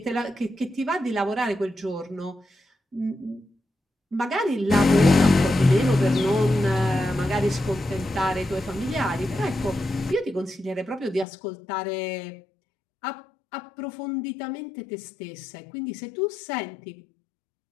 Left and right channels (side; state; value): right; drops out; at 11.2 s